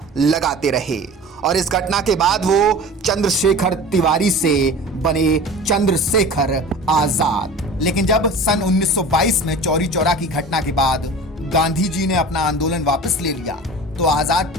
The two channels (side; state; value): both; normal; correlation 0.38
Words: लगाते रहे और इस घटना के बाद वो चंद्रशेखर तिवारी से बने चंद्रशेखर आजाद। लेकिन जब सन 1922 में चौरी चौरा की घटना के बाद गांधी जी ने अपना आंदोलन वापस ले लिया तो आजाद